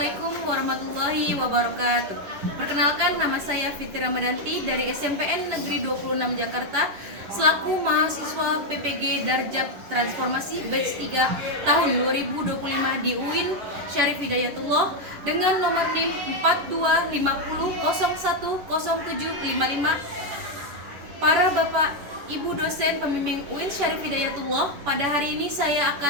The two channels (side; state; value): left; late; 11 ms